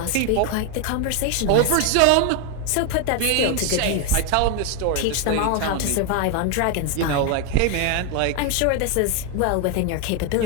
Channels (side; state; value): both; different; correlation 0.01